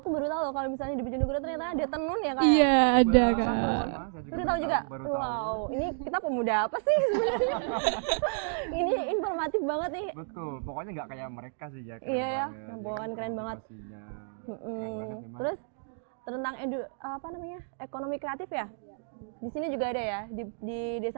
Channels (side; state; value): left; silent; digital silence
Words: baru tahu loh kalau misalnya di Bojonegoro ternyata ada tenun ya kak ya? Iya ada. Sama, Kak. sama. Saya juga Baru tahu juga. Baru tahu. Wow, ini kita pemuda apa sih sebenarnya? Ini informatif banget nih. Betul, pokoknya nggak kayak mereka sih ya. Iya ya, banget. rombongan keren banget. Motivasinya Mm-mm. keren banget memang. Terus tentang ekonomi kreatif ya? Di sini juga ada ya, di